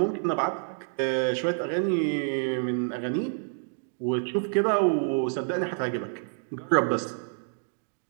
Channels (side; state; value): left; silent; digital silence